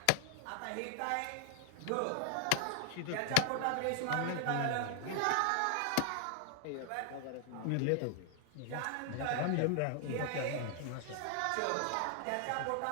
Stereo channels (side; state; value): both; different; correlation 0.00